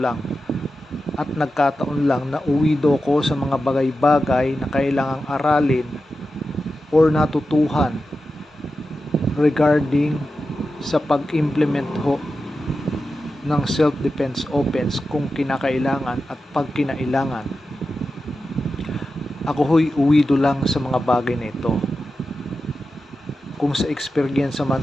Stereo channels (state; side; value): normal; both; correlation 0.91